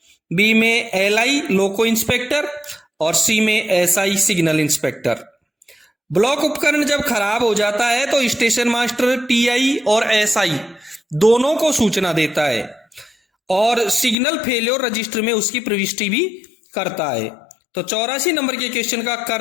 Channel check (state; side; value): drops out; right; at 14.2 s